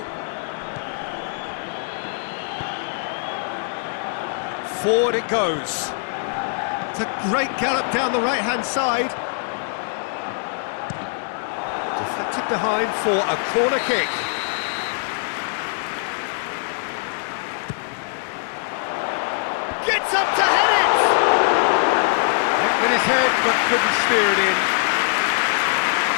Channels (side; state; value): right; silent; digital silence